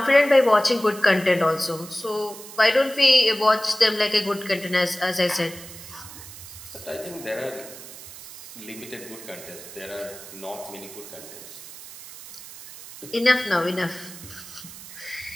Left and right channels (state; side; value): noise; right; hiss, 15 dB below the sound